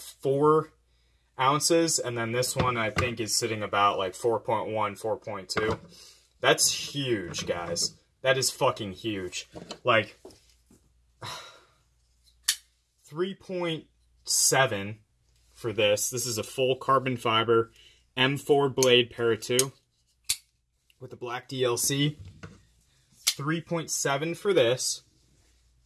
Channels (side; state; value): both; identical; correlation 1.00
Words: ounces. And then this one, I think, is sitting about like 4.1, 4.2. That's huge, guys. That is fucking huge. Like, 3.7 for this. This is a full carbon fiber M4 blade para 2 with the black DLC. 3.7 for this.